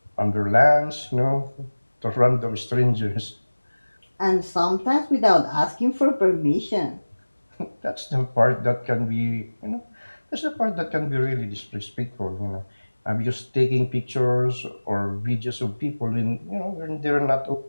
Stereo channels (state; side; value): inverted; both; correlation -1.00